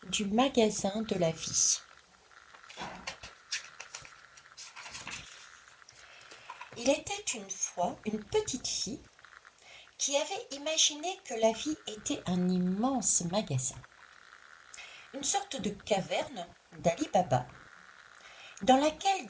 du magasin de la vie. Il était une fois une petite fille qui avait imaginé que la vie était un immense magasin, une sorte de caverne d'Ali Baba, dans laquelle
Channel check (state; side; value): identical; both; correlation 1.00